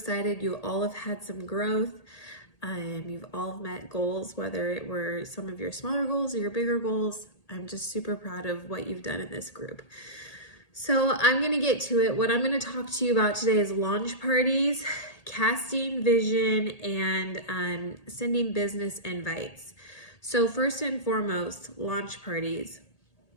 You all have had some growth. You've all met goals, whether it were some of your smaller goals or your bigger goals. I'm just super proud of what you've done in this group. So I'm going to get to it. What I'm going to talk to you about today is launch parties, casting vision, and sending business invites. So first and foremost, launch parties.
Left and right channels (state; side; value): late; right; 1.8 ms